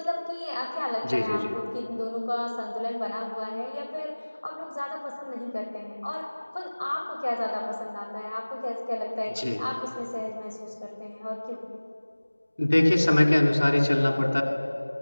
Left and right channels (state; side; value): inverted; both; correlation -1.00